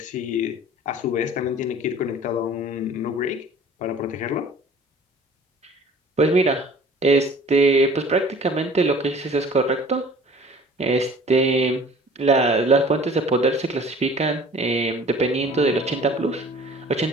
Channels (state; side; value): normal; both; correlation 0.48